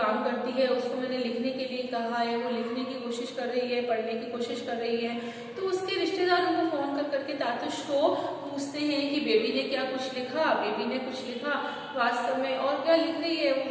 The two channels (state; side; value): identical; both; correlation 1.00